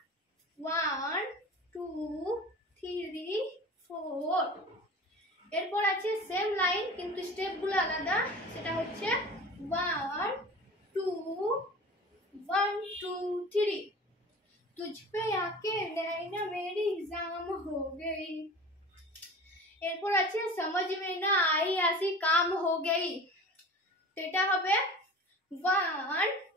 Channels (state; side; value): normal; both; correlation 0.38